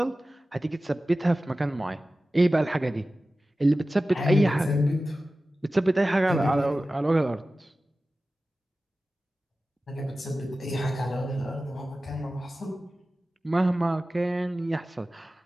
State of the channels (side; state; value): both; normal; correlation 0.95